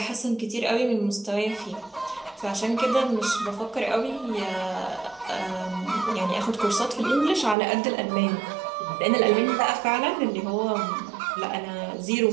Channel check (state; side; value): drops out; left; at 7.6 s